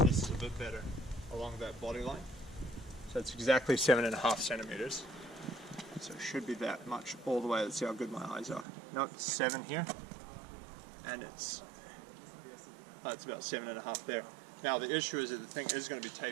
is a bit better along that body line. So it's exactly 7.5 centimeters. So it should be that much all the way. Let's see how good my eyes are. No, it's 7 here, and it's about 7.5 there. Now the issue is that the thing is going to be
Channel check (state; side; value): drops out; left; at 8.7 s